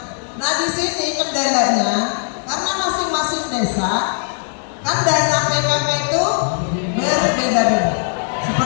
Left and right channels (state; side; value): silent; right; 64 dB below the other